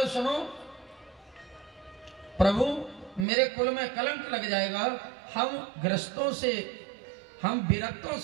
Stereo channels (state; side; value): drops out; left; at 3.2 s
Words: सुनो प्रभु मेरे कुल में कलंक लग जाएगा, हम गृहस्थों से, हम विरक्तों